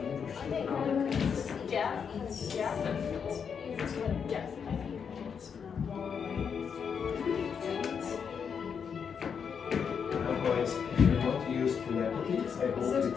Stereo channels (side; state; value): right; quieter; 6.8 dB